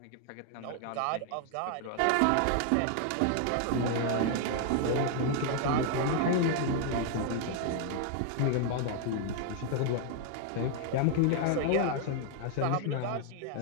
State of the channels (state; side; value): different; both; correlation 0.00